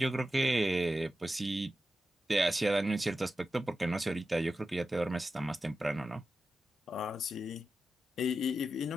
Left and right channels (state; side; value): normal; both; correlation 0.91